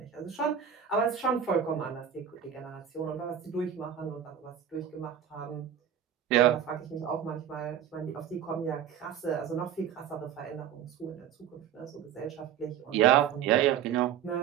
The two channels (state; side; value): quieter; left; 9.1 dB